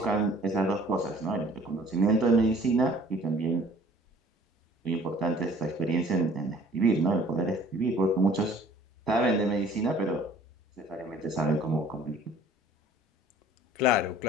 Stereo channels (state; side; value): normal; both; correlation 0.52